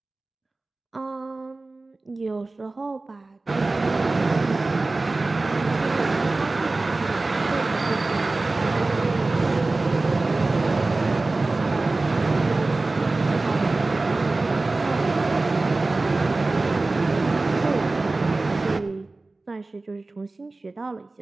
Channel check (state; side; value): quieter; left; 3.3 dB